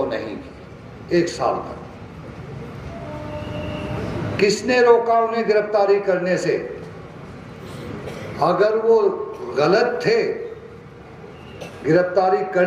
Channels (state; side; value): identical; both; correlation 1.00